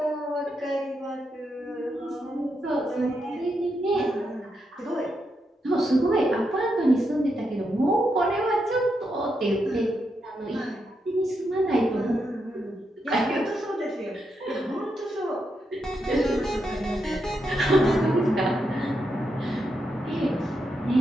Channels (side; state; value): both; normal; correlation 0.83